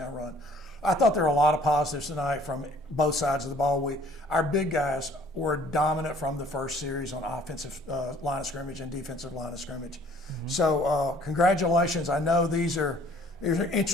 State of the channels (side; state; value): both; normal; correlation 0.56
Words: run. I thought there were a lot of positives tonight from both sides of the ball. Our big guys were dominant from the first series on offensive line of scrimmage and defensive line of scrimmage. So congratulations. I know these are